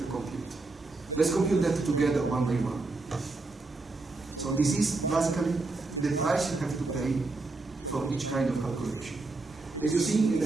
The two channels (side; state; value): left; quieter; 3.4 dB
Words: compute. Let's compute that together one by one. So this is basically the price you have to pay for each kind of calculation. As you see, in